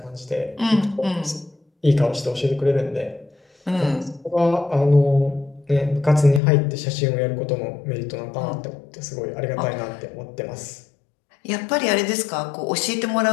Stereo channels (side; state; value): right; drops out; at 6.4 s